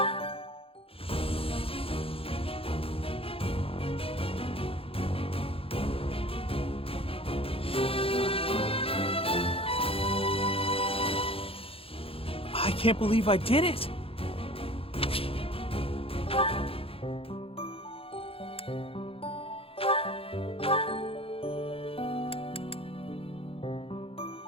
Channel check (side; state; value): right; late; 0.27 ms